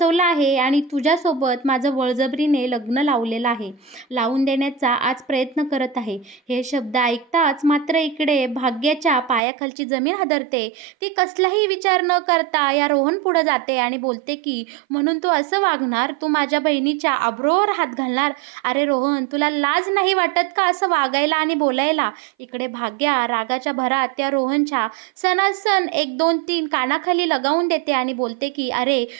आहे आणि तुझ्यासोबत माझं बळजबरीने लग्न लावलेलं आहे, लावून देण्याचा आज प्रयत्न करत आहे. हे शब्द ऐकताच मात्र इकडे भाग्याच्या पायाखालची जमीन हादरते. ती कसलाही विचार न करता या रोहन पुढे जाते आणि बोलते की म्हणून तू असं वागणार? तू माझ्या बहिणीच्या आबरूवर हात घालणार? अरे रोहन, तुला लाज नाही वाटत का असं वागायला आणि बोलायला? इकडे भाग्या रागाच्या भरात त्या रोहनच्या सणासण 1 2 3 कानाखाली लगावून देते आणि बोलते की अरे,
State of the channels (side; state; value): left; drops out; at 9.4 s